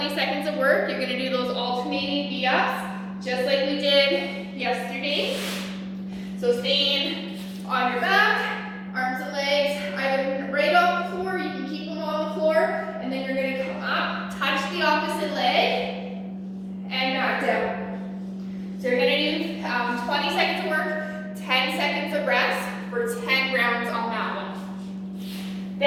seconds of work, you're gonna do those alternating V-ups, just like we did yesterday. So staying on your back, arms and legs, either right off the floor, you can keep them on the floor, and then you're gonna come up, touch the opposite leg, and back down. So you're gonna do 20 seconds of work, 10 seconds of rest for 10 rounds on that one.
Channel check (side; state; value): both; identical; correlation 1.00